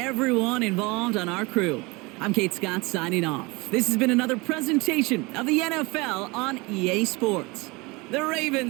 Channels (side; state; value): left; quieter; 25.1 dB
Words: involved on our crew, I'm Kate Scott signing off. This has been another presentation of the NFL on EA Sports. The